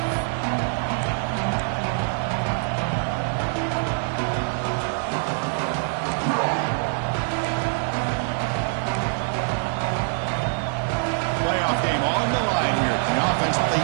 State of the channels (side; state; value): left; silent; 58 dB below the other